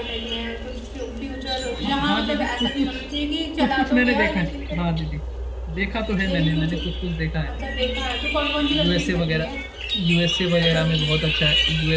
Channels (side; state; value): both; identical; correlation 1.00